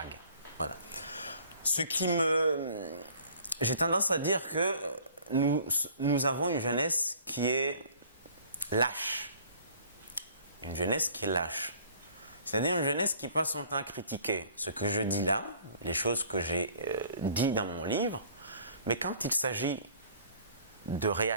Voilà. ce qui me... J'ai tendance à dire que nous avons une jeunesse qui est lâche. Une jeunesse qui est lâche. C'est-à-dire une jeunesse qui passe son temps à critiquer ce que je dis là, les choses que j'ai dit dans mon livre, mais quand il s'agit de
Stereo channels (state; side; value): inverted; both; correlation -0.53